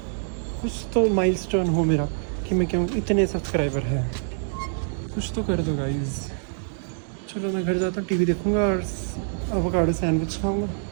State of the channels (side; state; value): left; silent; digital silence